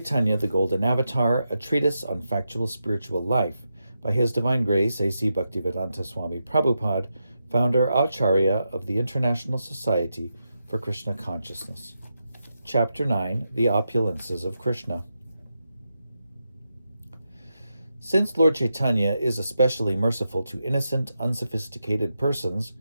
the Golden Avatar, a treatise on factual spiritual life, by His Divine Grace A.C. Bhaktivedanta Swami Prabhupada, founder Acharya of the International Society for Krishna Consciousness. Chapter 9, The Opulences of Krishna. Since Lord Caitanya is especially merciful to innocent, unsophisticated persons,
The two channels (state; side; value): inverted; both; correlation -0.86